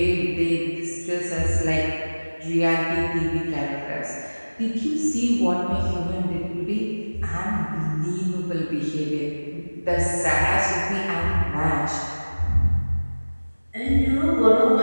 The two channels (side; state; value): both; inverted; correlation -1.00